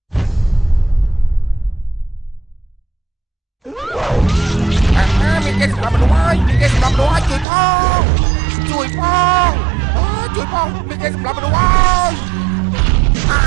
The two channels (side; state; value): left; drops out; at 7.5 s